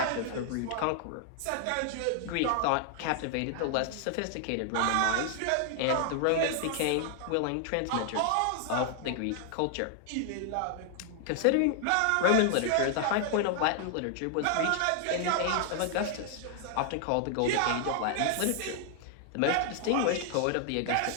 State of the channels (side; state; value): both; different; correlation 0.00